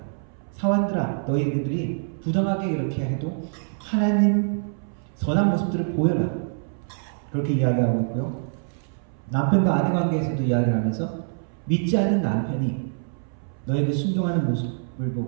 사환들아, 너희들이 부정하게 이렇게 해도 하나님 선한 모습들을 보여라. 그렇게 이야기하고 있고요. 남편과 아내 관계에서도 이야기를 하면서 믿지 않는 남편이 너에게 순종하는 모습을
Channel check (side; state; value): left; silent; 62 dB below the other